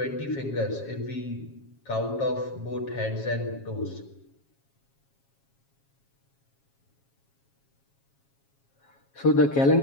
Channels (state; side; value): late; right; 7.3 ms